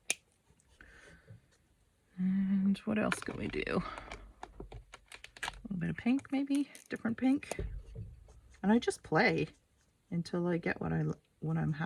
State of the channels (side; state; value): both; identical; correlation 1.00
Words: And what else can we do? A little bit of pink, maybe, different pink. And I just play until I get what I'm